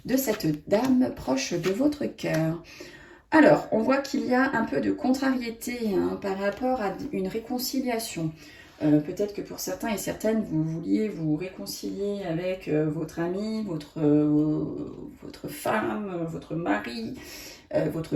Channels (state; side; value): identical; both; correlation 1.00